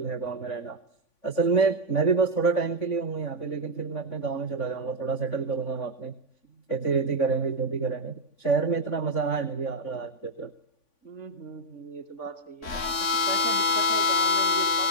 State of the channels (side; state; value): right; late; 3.5 ms